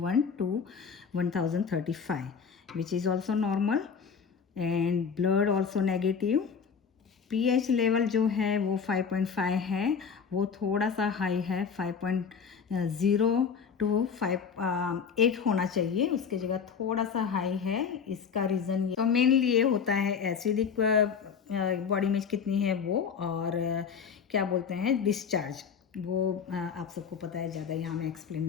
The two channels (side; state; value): right; quieter; 6.4 dB